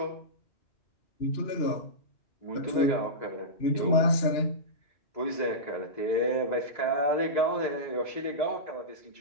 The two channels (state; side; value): late; right; 2.9 ms